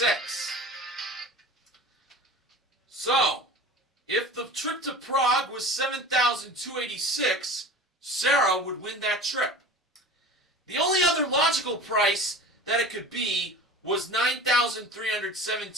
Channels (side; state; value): both; normal; correlation 0.37